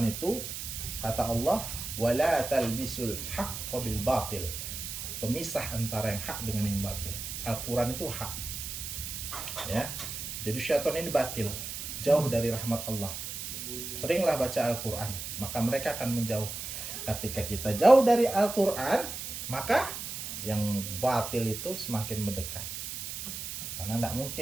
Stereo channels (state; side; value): noise; right; hiss, 6 dB below the sound